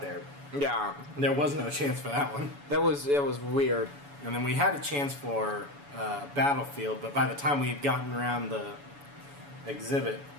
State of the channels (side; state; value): left; late; 7.0 ms